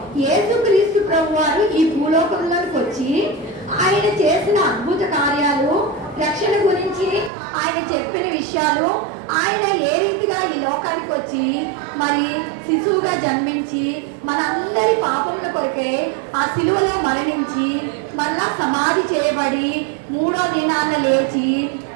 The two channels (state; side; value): drops out; left; at 7.3 s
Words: యేసుక్రీస్తు ప్రభు వారు ఈ భూలోకంలోకి వచ్చి ఆయన చేసిన అద్భుత కార్యాలు, రక్షణ గురించి ఆయన చెప్పిన విషయాలు, ఆయన ఏ రీతిగా ఈ లోకానికి వచ్చి మరి శిశువుగా జన్మించి మనందరి పాపముల కొరకే ఆ శిలువలో మరణించి మళ్ళా సమాధి చేయబడి 3వ దినాన లేచి